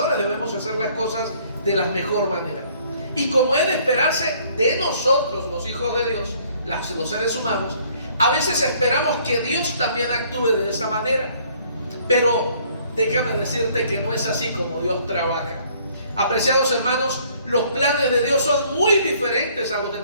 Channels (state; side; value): inverted; both; correlation -0.61